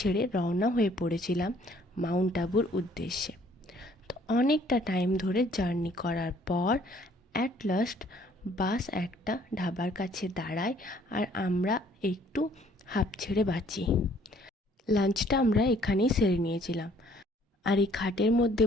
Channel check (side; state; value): both; normal; correlation 0.60